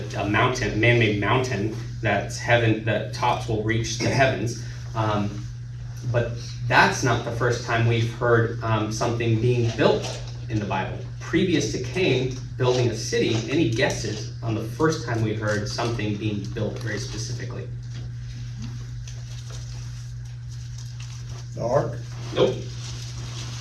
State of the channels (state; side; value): identical; both; correlation 1.00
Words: mountain, man-made mountain that's heaven. The tops will reach the heavens. But that's not the first time we've heard something being built in the Bible. Previous to Cain building a city, any guesses on the first time we heard something being built very specifically? The ark. Nope.